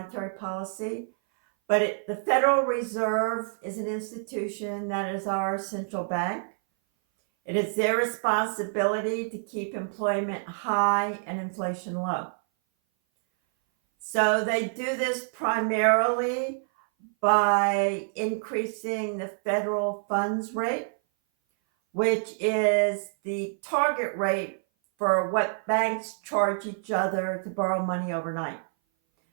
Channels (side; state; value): left; silent; 57 dB below the other